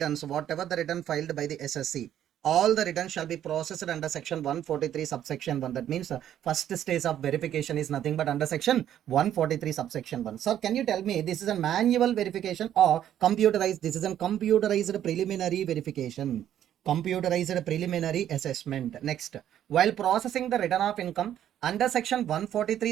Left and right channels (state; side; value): quieter; left; 10.9 dB